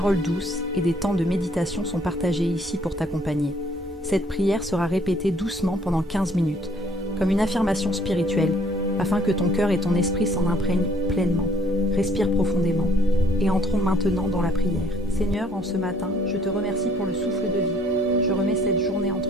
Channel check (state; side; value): normal; both; correlation 0.61